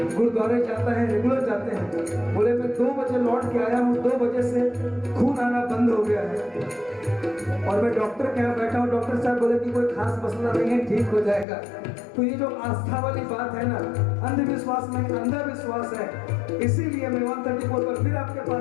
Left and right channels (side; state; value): right; drops out; at 11.5 s